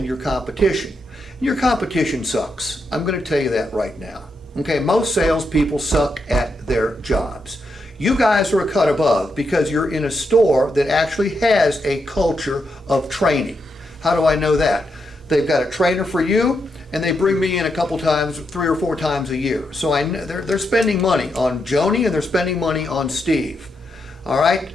your competition. Your competition sucks. I'm going to tell you that right now. Okay, most salespeople suck at their jobs. You guys are a cut above because you're in a store that actually has a culture of training. How do I know that? They've got a trainer for you, and they bring me in a couple times, 3 or 4 times a year. So I know they're spending money on Joni and they're spending money on Steve. All right?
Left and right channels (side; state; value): both; normal; correlation 0.82